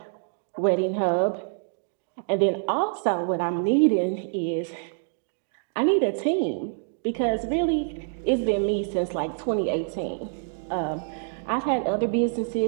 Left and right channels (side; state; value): left; silent; digital silence